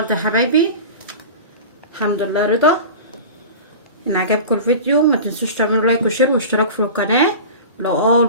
يا حبايبي، الحمد لله رضا. ان عجبكم الفيديو ما تنسوش تعملوا لايك وشير واشتراك في القناه. لو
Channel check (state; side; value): inverted; both; correlation -0.33